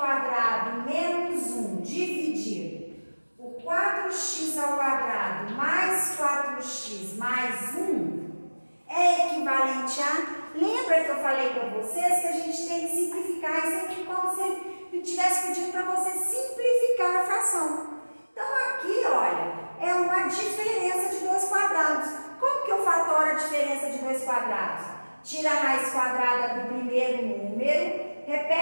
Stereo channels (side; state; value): both; inverted; correlation -1.00